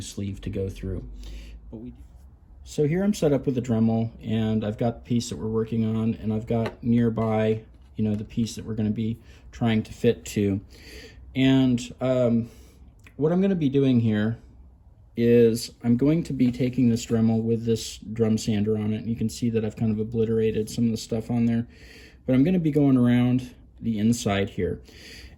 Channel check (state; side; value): identical; both; correlation 1.00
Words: sleeve to go through. But so here I'm set up with the Dremel, and I've got the piece that we're working on, and I've got nearby, you know, the piece that we're going to be trying to fit to. And what I'm going to be doing here is I'm going to be taking this Dremel with this drum sander on it, and you can see that I've kind of obliterated some of the stuff on there. But I'm going to be going around the inside here.